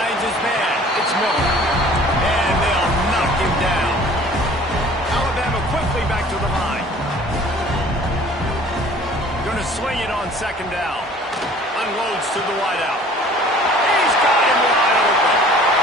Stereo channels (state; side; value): normal; both; correlation 0.50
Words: his man. It's Miller. And they'll knock him down. Alabama quickly back to the line. Going to swing it on second down. Unloads to the wideout. He's got him wide open.